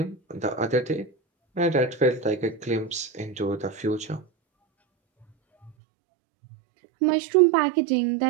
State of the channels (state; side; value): drops out; left; at 5.7 s